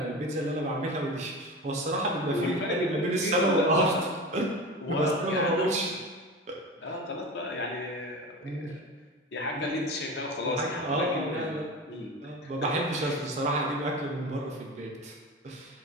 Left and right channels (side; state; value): both; normal; correlation 0.29